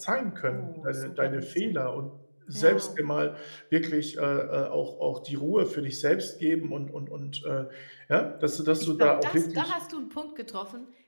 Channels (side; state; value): both; inverted; correlation -1.00